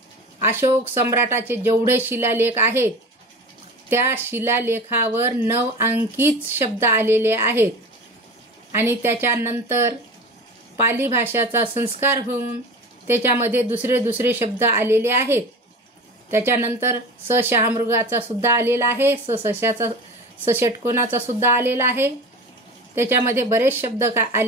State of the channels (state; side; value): normal; both; correlation 0.34